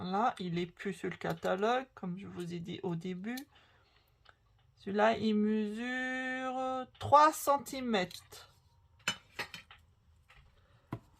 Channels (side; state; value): both; identical; correlation 1.00